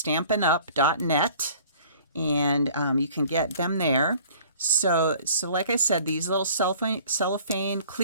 and you can get them there. So like I said, these little cellophane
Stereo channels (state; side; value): inverted; both; correlation -0.51